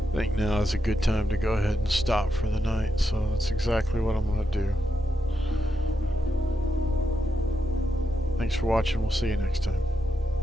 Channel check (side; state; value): both; normal; correlation 0.85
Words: I think now is a good time to go ahead and stop for the night, so that's exactly what I'm going to do. Thanks for watching. We'll see you next time.